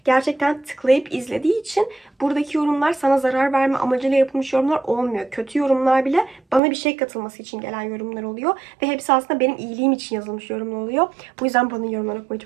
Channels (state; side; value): drops out; left; at 6.6 s